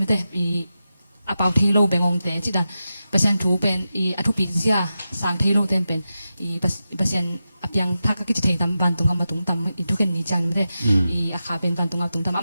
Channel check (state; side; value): inverted; both; correlation -0.91